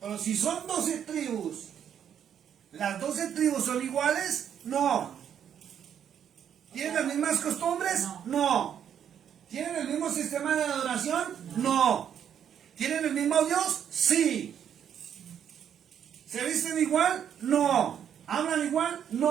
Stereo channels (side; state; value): left; quieter; 8.9 dB